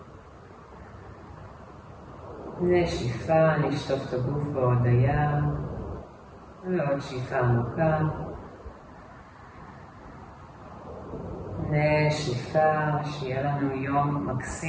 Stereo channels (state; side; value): identical; both; correlation 1.00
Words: נשיפה, נשטוף את הגוף בהודיה, ועוד שאיפה עמוקה, נשיפה, שיהיה לנו יום